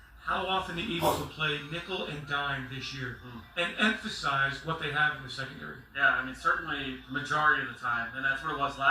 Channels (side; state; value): both; identical; correlation 1.00